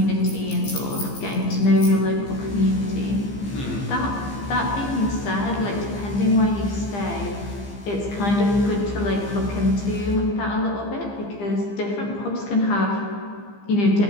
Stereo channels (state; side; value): late; right; 15 ms